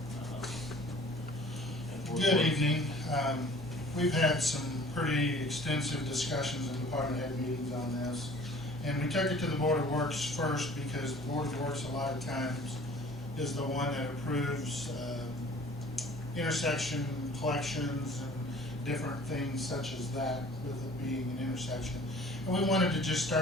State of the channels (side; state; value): both; normal; correlation 0.50